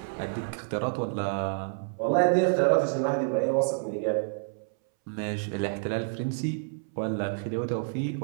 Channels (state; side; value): silent; left; 59 dB below the other